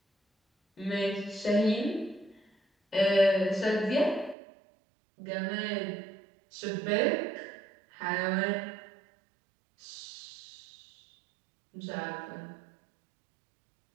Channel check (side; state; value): left; drops out; at 4.4 s